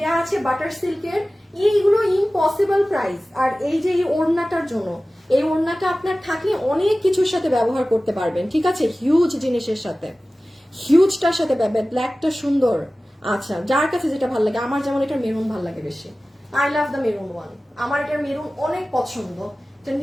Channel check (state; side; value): normal; both; correlation 0.97